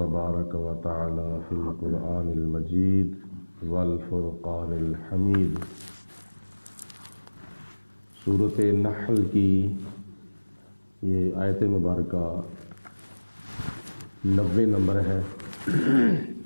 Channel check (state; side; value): inverted; both; correlation -1.00